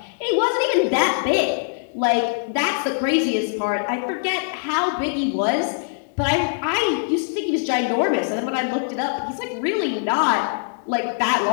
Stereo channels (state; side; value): silent; right; digital silence